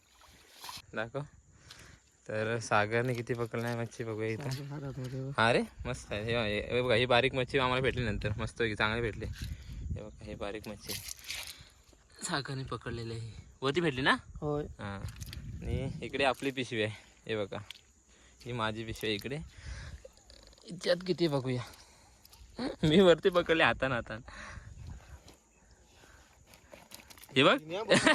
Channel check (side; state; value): both; identical; correlation 1.00